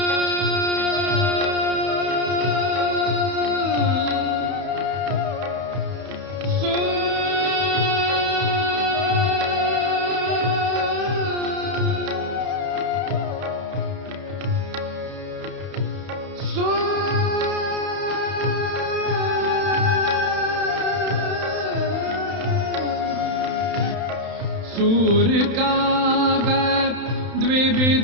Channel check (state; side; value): late; left; 31 ms